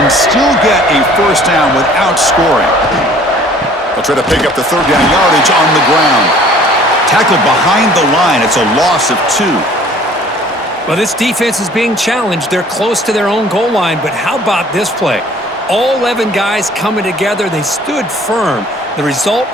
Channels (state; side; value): normal; both; correlation 0.53